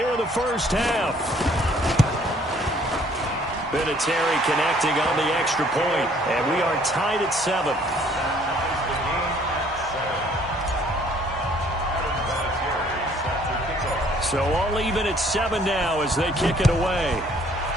in the first half. Vinatieri connecting on the extra point, and we are tied at 7. So all even at 7 now as they kick it away.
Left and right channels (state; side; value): normal; both; correlation 0.60